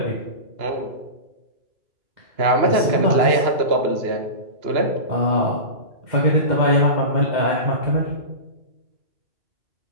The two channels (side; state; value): left; late; 2.9 ms